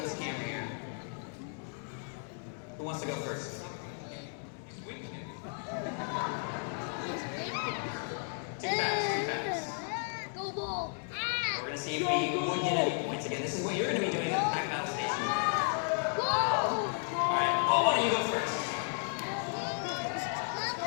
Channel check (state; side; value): silent; right; 55 dB below the other